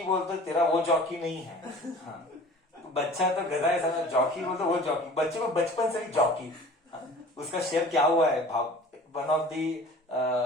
बोलते तेरा वो जॉकी नहीं है। हाँ, बच्चा तो गधा है, समझ, जॉकी बोलते वो जॉकी, बच्चे को बचपन से ही जॉकी। हाँ, उसका शेयर क्या हुआ है भाव, one of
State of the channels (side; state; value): both; normal; correlation 0.44